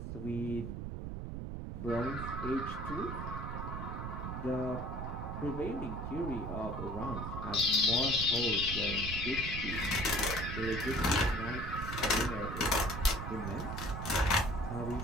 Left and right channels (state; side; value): noise; right; rumble, 5 dB below the sound